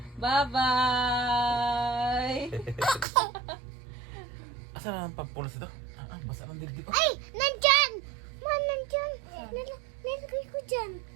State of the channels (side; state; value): left; drops out; at 3.1 s